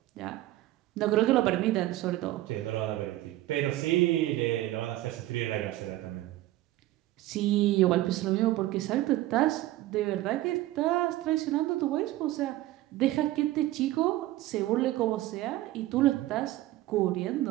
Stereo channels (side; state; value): left; quieter; 15.9 dB